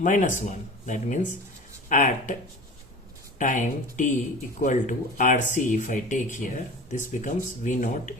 1. That means at time t equal to RC, if I take here, this becomes V naught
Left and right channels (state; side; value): normal; both; correlation 0.37